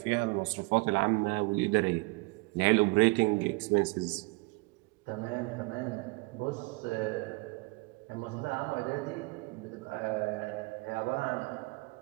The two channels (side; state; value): left; quieter; 27.0 dB